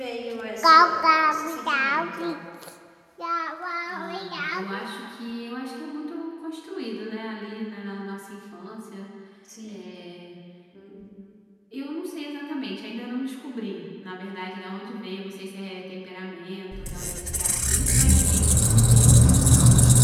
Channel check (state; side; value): identical; both; correlation 1.00